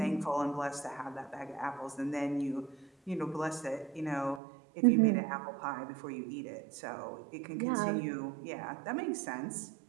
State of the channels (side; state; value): left; drops out; at 4.4 s